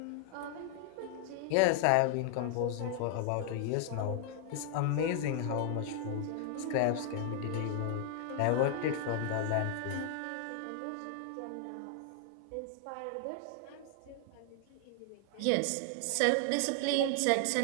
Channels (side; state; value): both; different; correlation 0.00